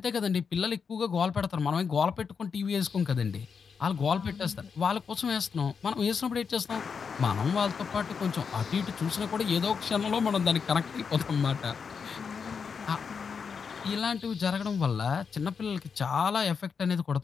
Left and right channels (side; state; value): right; quieter; 6.0 dB